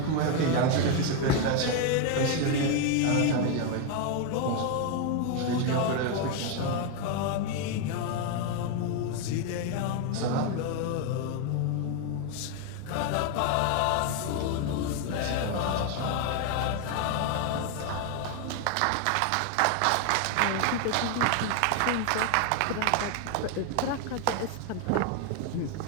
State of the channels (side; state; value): both; different; correlation 0.01